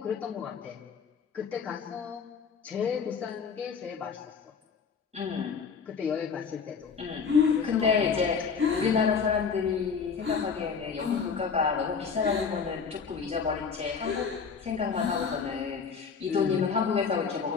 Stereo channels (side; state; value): right; quieter; 5.9 dB